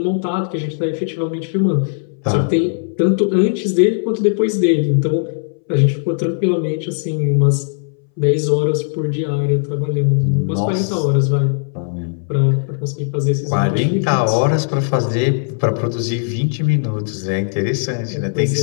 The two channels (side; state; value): right; silent; 64 dB below the other